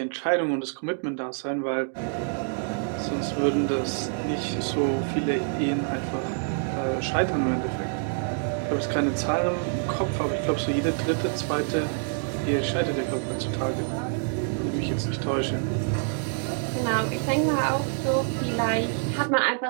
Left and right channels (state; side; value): silent; left; digital silence